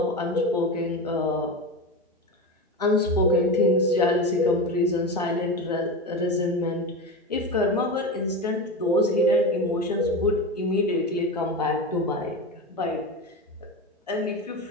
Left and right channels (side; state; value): both; normal; correlation 0.22